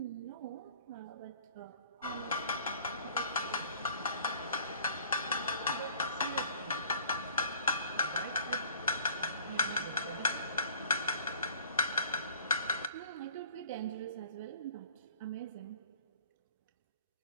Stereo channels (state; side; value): inverted; both; correlation -0.51